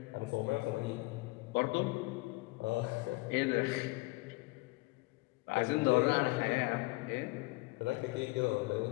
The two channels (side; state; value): right; quieter; 23.3 dB